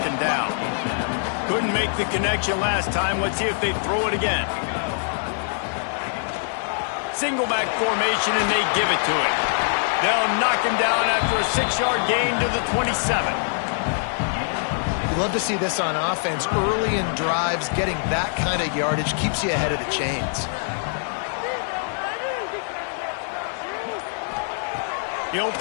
down. Couldn't make the connection last time. Let's see if they throw it again. Single back formation, and they give it to him. They'll knock him down after a 6-yard gain to the 27. You love to see this on offense. Early in drives, getting that kind of yardage keeps you ahead of the chains. He'll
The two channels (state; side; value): silent; right; 63 dB below the other